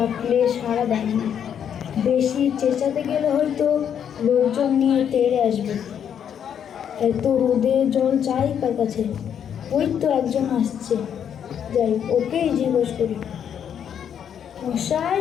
সাড়া দেয় না। বেশি চেঁচাতে গেলে হয়তো লোকজন নিয়ে তেড়ে আসবে। এত রোদে জল চাই কার কাছে? ওই তো একজন আসছে, যাই ওকেই জিজ্ঞেস করি। মশাই,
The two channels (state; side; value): quieter; right; 8.6 dB